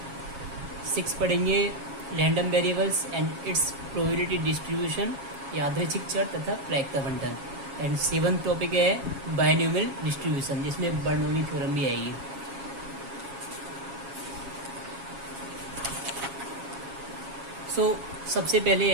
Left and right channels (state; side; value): late; left; 7.3 ms